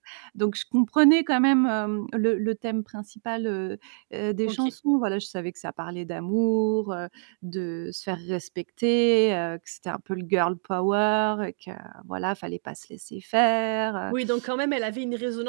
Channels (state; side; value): silent; left; digital silence